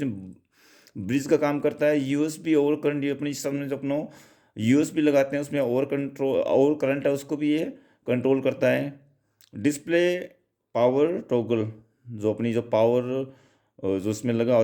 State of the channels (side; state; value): both; identical; correlation 1.00